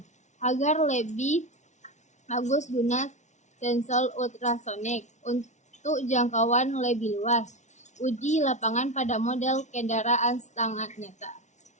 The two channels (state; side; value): late; right; 0.34 ms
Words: Agar lebih bagus guna sensor ultrasonik untuk jangkauan lebih luas. Uji lapangan pada model kendaraan setengah nyata.